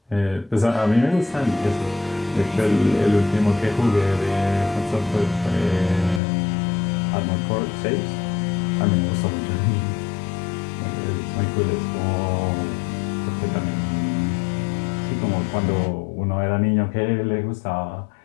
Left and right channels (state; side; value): drops out; right; at 6.2 s